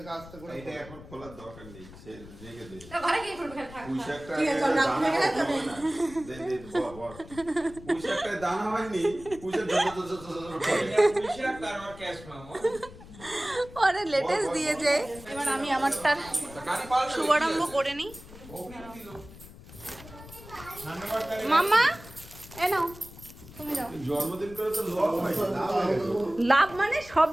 আস্তে করে এটা এখন খোলার দরকার নেই, সে রেখে দে। ঘরে গিয়ে খুলবে, থাক পুঁইশাকটা ঠিক আছে, চল, না খুলে গেলে তো নেই। দে দে বল পুঁইশাকটায় দানা হয়নি, পুঁইশাক করে এটা পুলিশরা তারপর ক্যাশ মামো আরে লেটেস্ট দিয়েছে। এবার আমি আমারটা গাড়ি পাল্টে শুভারম্ভ করে নিই। ওখানে দিল সামনে বার তাহলে মাম্মা এ নাও, তুমি দাও। জন্মদিন করে তো লস হয় লাভ মানে সব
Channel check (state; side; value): noise; left; rumble, 17 dB below the sound